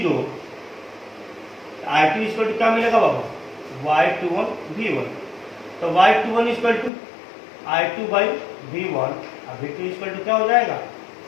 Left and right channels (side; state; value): right; drops out; at 6.9 s